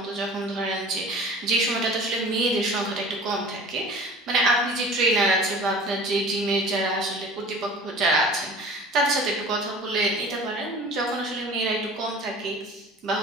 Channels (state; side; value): normal; both; correlation 0.42